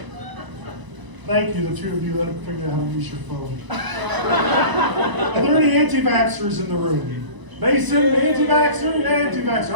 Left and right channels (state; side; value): late; left; 1.0 ms